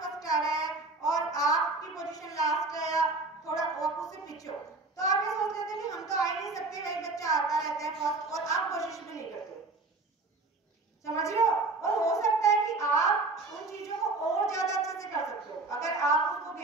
फर्स्ट आ रहा है और आपकी पोजीशन लास्ट है या थोड़ा आप उससे पीछे हो, तो आप ये सोच लेते हैं कि हम तो आ ही नहीं सकते, वही बच्चा आता रहता है फर्स्ट और आप कोशिश भी नहीं करते। समझ रहे हो? और हो सकता है कि आप उन चीजों को और ज्यादा अच्छे से कर सकते हो अगर आप उसको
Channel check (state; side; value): quieter; left; 3.4 dB